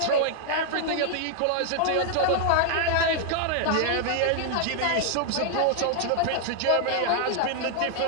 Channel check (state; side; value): different; both; correlation 0.00